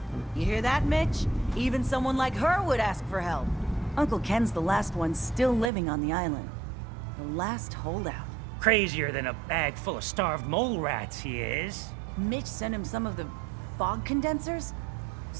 them. You hear that, Mitch? Even someone like her would ask for help. Uncle Ken's the last one still living on the island. The last holdout. Crazier than a bag full of starved mole rats, he is. Mitch sent him some of the fog condensers?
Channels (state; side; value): drops out; left; at 5.7 s